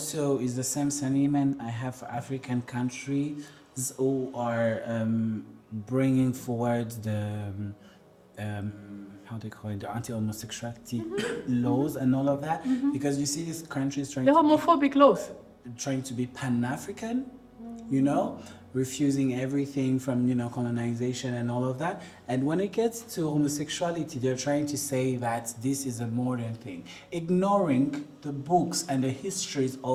is the same sentiment I have for African countries who are bringing forward the how they call it, the anti-homosexuality laws and all of that, because you see these countries The homophobic laws. trying to be Pan-African, you know, refusing everything from, colonization and all of that. And when it gets to homosexuality, they're trying to say that this is a modern thing, ignoring the books and the histories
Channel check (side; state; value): both; identical; correlation 1.00